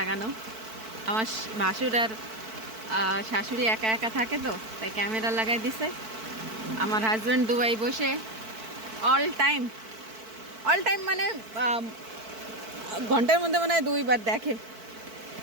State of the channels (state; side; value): late; left; 4.5 ms